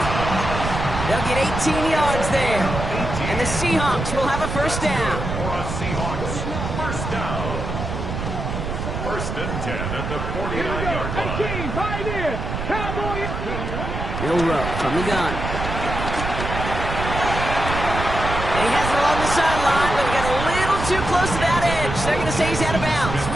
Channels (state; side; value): noise; right; rumble, 4 dB below the sound